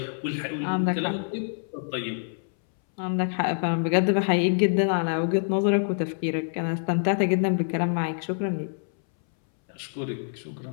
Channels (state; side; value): silent; right; 61 dB below the other